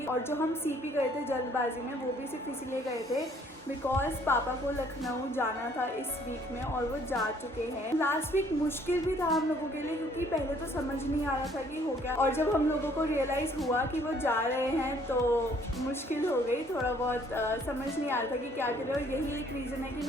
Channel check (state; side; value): normal; both; correlation 0.61